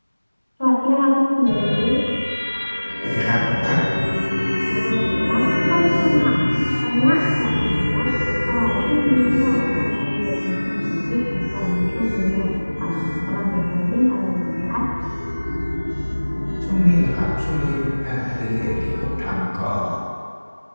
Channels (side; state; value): both; inverted; correlation -1.00